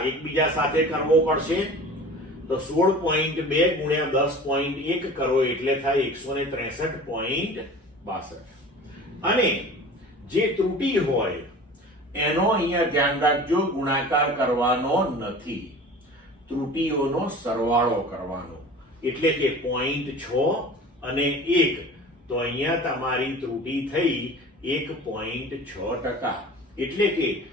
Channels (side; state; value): both; normal; correlation 0.40